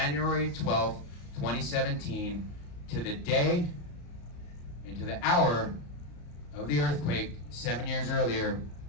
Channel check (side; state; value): right; late; 34 ms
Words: 12th, 2017, to the day and to the hour of the earthquake 7 years earlier,